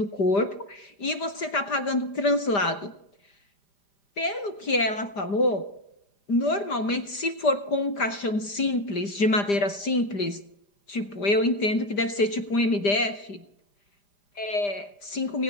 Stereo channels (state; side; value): late; right; 5.0 ms